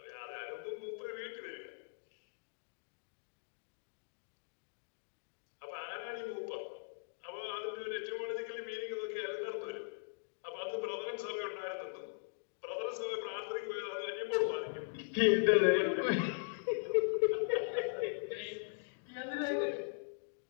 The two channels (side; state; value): right; silent; digital silence